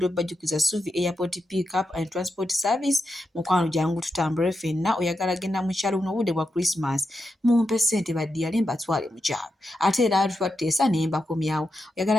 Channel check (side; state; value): both; normal; correlation 0.87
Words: bajjukiza Suvi Airport Pick Up and Transport Service mukwano jangu tutambule ffenna oyagala genda mu kyalo buno obudde bwa Christmas mumpe ssente baddiyale mbatwale mu kyalo ate era twateesa ne mbakomyawo